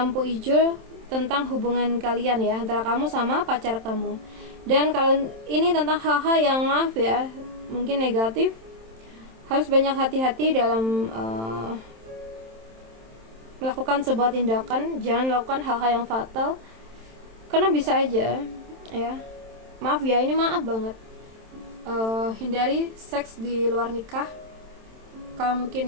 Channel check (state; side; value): late; left; 27 ms